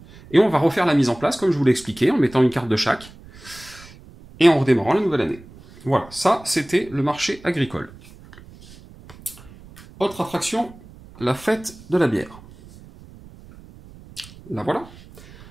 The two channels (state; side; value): noise; right; rumble, 21 dB below the sound